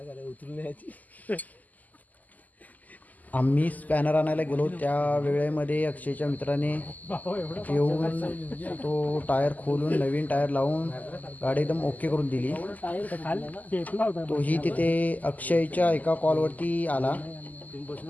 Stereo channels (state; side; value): late; right; 0.080 ms